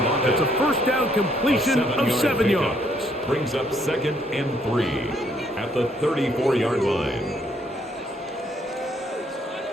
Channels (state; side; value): normal; both; correlation 0.69